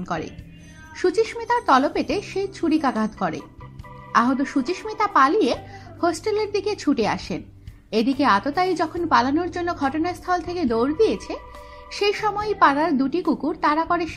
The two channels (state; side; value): identical; both; correlation 1.00